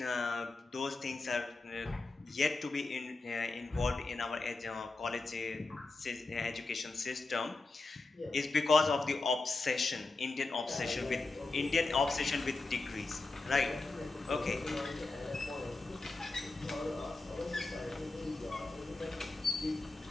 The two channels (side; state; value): right; quieter; 3.5 dB